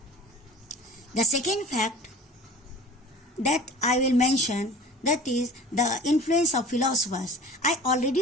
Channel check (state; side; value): normal; both; correlation 0.42